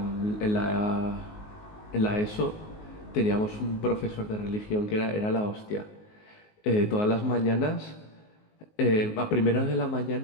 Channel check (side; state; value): right; late; 19 ms